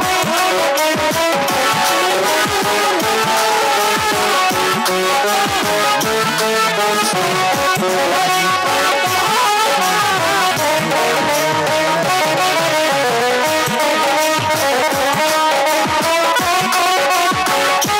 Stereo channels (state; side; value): identical; both; correlation 1.00